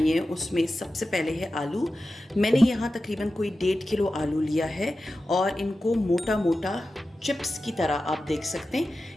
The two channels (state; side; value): normal; both; correlation 0.93